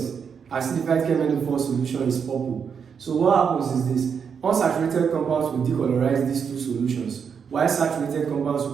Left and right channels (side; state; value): left; quieter; 6.7 dB